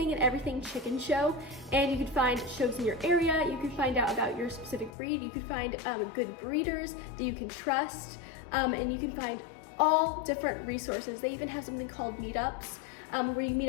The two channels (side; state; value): right; drops out; at 4.9 s